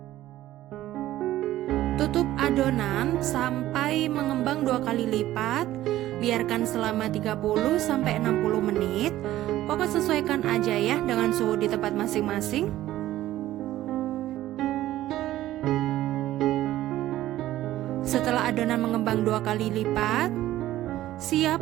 Tutup adonan sampai mengembang 2 kali lipat. Biarkan selama 30-60 menit. Pokoknya sesuaikan aja ya dengan suhu di tempat masing-masing. Setelah adonan mengembang 2 kali lipat,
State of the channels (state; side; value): quieter; left; 14.5 dB